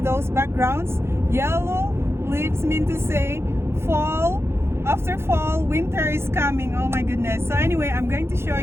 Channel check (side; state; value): left; late; 0.12 ms